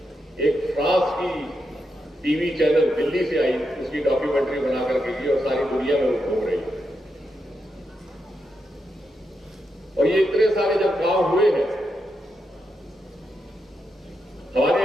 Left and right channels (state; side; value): normal; both; correlation 0.84